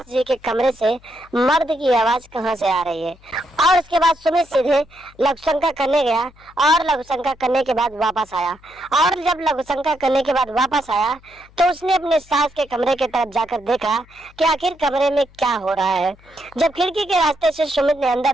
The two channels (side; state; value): left; noise; hum, 27 dB below the sound